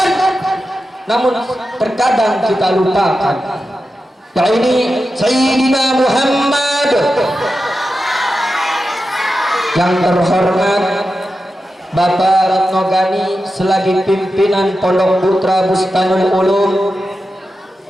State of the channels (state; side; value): normal; both; correlation 0.91